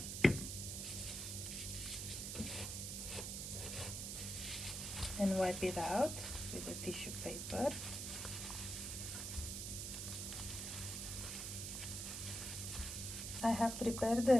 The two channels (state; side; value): noise; right; hiss, 4 dB below the sound